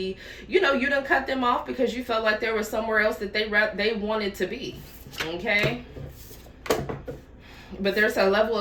you know, you done cut them off because you felt like there was somewhere else that they wanted to be. Okay? But there's a level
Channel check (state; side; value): identical; both; correlation 1.00